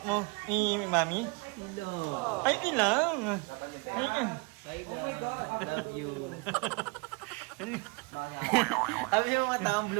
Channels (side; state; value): left; quieter; 28.7 dB